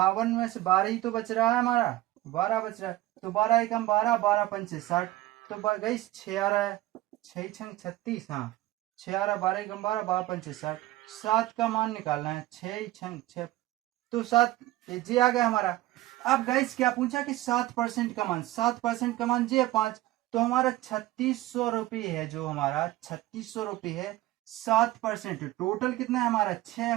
में से 12 ही तो बच रहा है हमारा, 12 बच रहा है। तो 12 एकम 12, 12 पंचे 60, तो गई 6 आ रहा है। 6 छंग 36, हाँ 6 12 एकम 12 12 पंचे 60, 7 का मान निकालना है, 6 छंग 6 तो 7 जी आ गया हमारा। अब गाइस क्या पूछा कि 7% का मान, 7% का मान जी है 5, तो हमारा 3600 रुपये है, जो हमारा 3600 रुपये है 7%, टोटल कितना है हमारा 6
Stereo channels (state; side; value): quieter; left; 16.7 dB